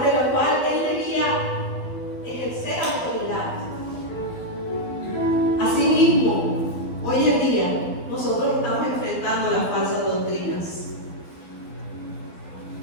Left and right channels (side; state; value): right; late; 12 ms